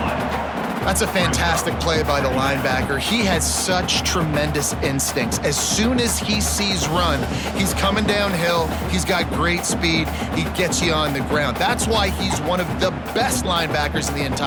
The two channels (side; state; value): both; identical; correlation 1.00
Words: That's a fantastic play by the linebacker. He has such tremendous instincts. As soon as he sees run, he's coming downhill. He's got great speed. He gets you on the ground. That's why he's one of the best linebackers in the